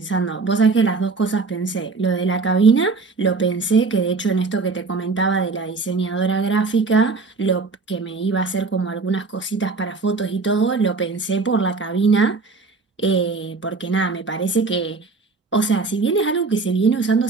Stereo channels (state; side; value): quieter; left; 4.2 dB